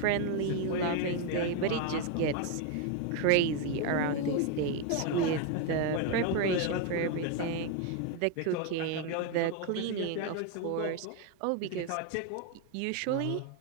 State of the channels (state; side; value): different; both; correlation 0.02